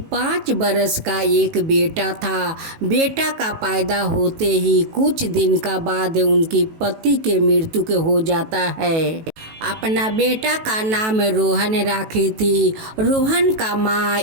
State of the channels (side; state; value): left; late; 18 ms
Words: 5 बरस का एक बेटा था। बेटा का पैदा होते ही कुछ दिन का बाद उनकी पति के मृत्यु के हो जाता है। अपना बेटा का नाम रोहन रखी थी। रोहन का माँ